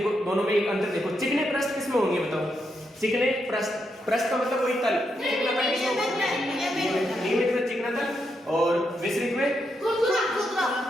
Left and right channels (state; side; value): normal; both; correlation 0.81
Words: दोनों में एक अंतर देखो। चिकने पृष्ठ किसमें होंगे बताओ? चिकने पृष्ठ का मतलब वही तल, चिकना तल किसमें होगा? नियमित में चिकना तल और विसरित में